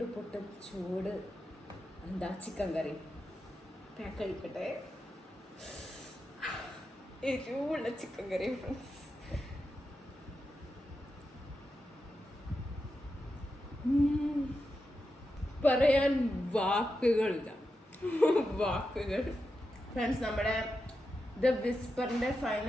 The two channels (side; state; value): both; normal; correlation 0.89